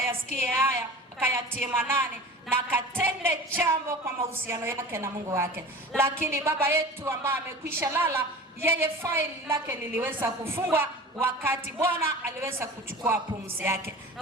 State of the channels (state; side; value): normal; both; correlation 0.37